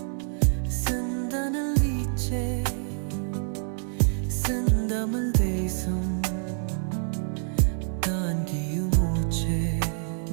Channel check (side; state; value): left; silent; 60 dB below the other